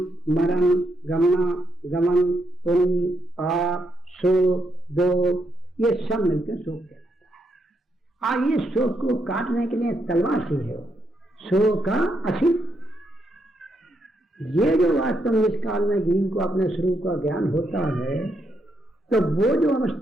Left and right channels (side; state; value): both; normal; correlation 0.79